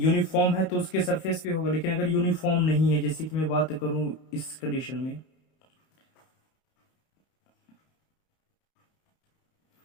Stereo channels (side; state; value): right; late; 31 ms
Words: है तो उसके सरफेस पे होगा, लेकिन अगर यूनिफॉर्म नहीं है, जैसे कि मैं बात करूं इस कंडीशन में,